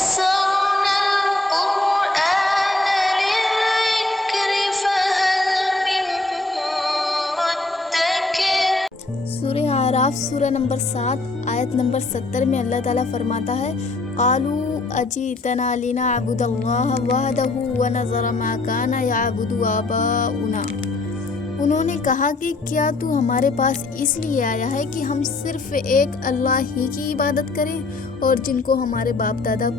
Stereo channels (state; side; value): quieter; right; 3.2 dB